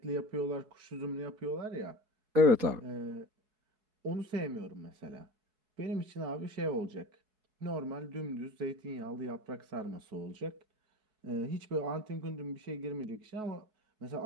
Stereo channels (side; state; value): left; late; 4.7 ms